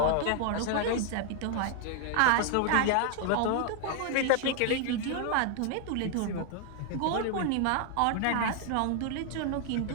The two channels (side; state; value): both; different; correlation 0.00